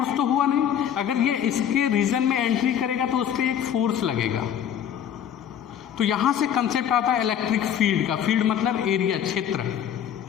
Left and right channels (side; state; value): right; quieter; 9.3 dB